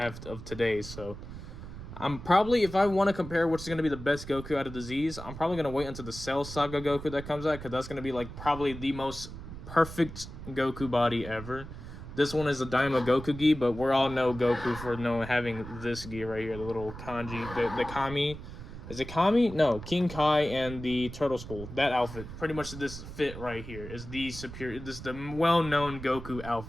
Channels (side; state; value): right; noise; rumble, 11 dB below the sound